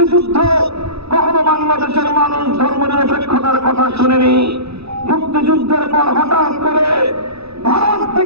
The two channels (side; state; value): left; late; 0.78 ms